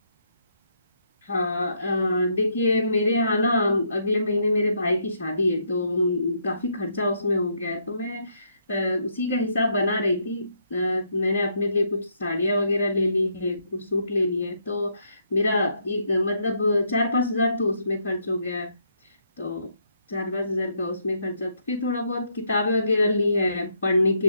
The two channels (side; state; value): both; inverted; correlation -0.74